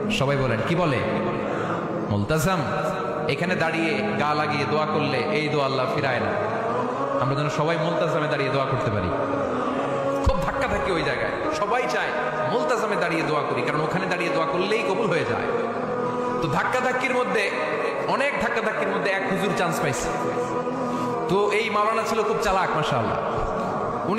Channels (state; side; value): identical; both; correlation 1.00